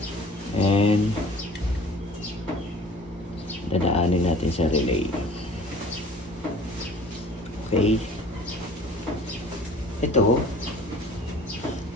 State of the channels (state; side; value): normal; both; correlation 0.48